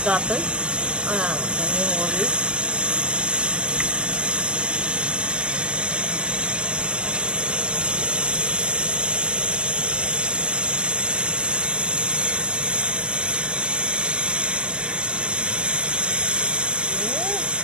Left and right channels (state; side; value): late; left; 0.050 ms